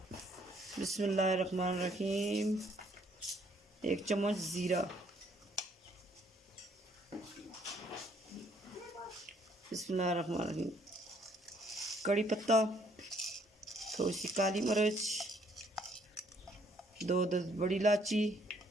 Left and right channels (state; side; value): normal; both; correlation 0.65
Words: बिस्मिल्लाहिर्रहमानिर्रहीम। 1 चम्मच ज़ीरा, बिस्मिल्लाहिर्रहमानिर्रहीम। कड़ी पत्ता, थोड़ी सी काली मिर्च, 2 बड़ी इलायची,